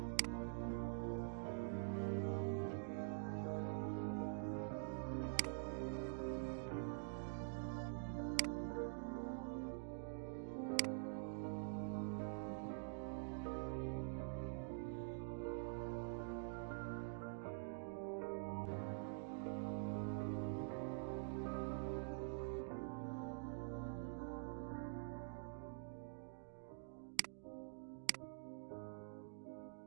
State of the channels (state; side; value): silent; left; digital silence